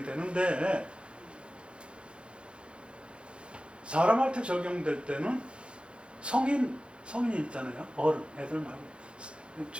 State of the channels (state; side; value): late; left; 0.057 ms